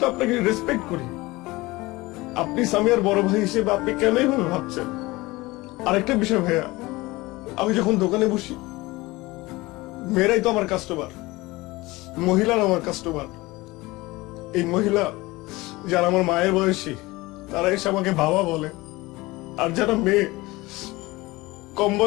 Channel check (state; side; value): quieter; right; 21.1 dB